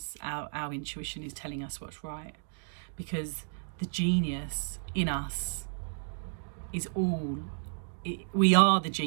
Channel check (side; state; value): left; silent; digital silence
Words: our intuition is telling us what's right. Because the genius in us is we are the